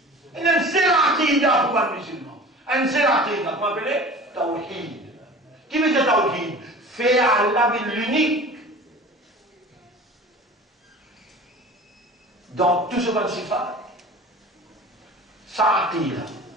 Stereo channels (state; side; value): normal; both; correlation 0.40